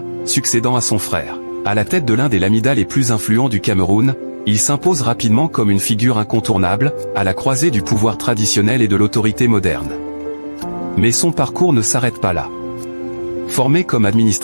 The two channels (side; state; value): both; inverted; correlation -1.00